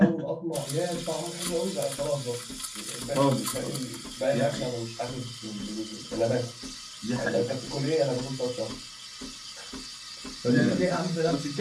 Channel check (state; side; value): identical; both; correlation 1.00